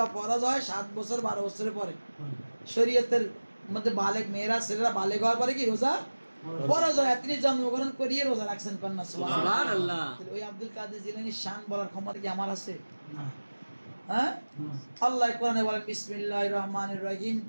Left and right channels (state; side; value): inverted; both; correlation -1.00